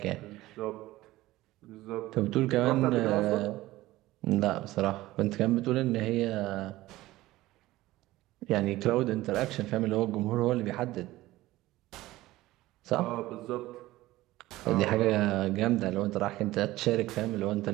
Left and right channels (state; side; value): quieter; left; 17.3 dB